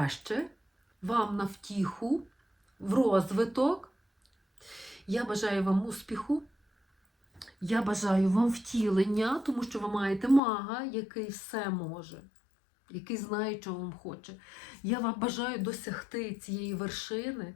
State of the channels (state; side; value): drops out; right; at 10.4 s